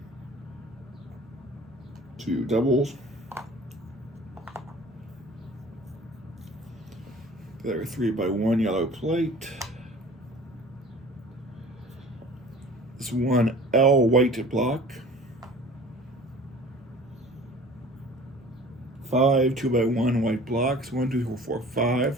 2 doubles. There are 3x1 yellow plate. This 1 L white block. 5 2x1 white blocks. 1, 2, 3, 4,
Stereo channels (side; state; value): both; normal; correlation 0.45